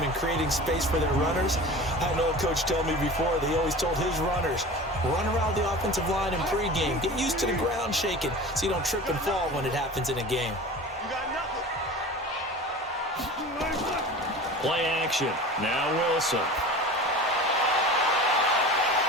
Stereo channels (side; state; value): both; normal; correlation 0.36